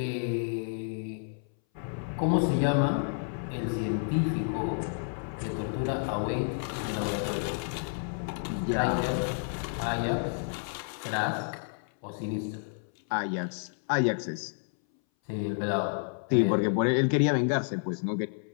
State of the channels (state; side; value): silent; right; 58 dB below the other